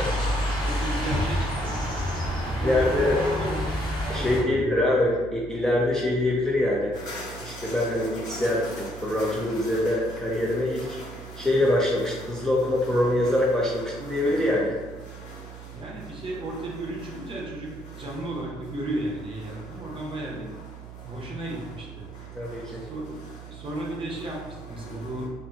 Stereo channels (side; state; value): right; noise; hum, 14 dB below the sound